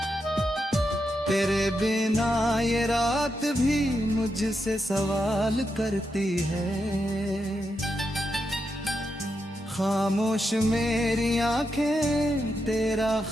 तेरे बिना ये रात भी मुझसे सवाल करती है, खामोश मेरी आंखें तेरा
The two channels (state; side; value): normal; both; correlation 0.85